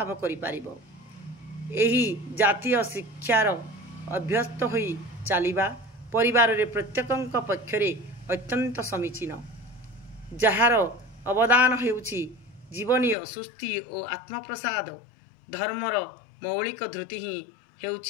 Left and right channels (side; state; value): right; drops out; at 13.2 s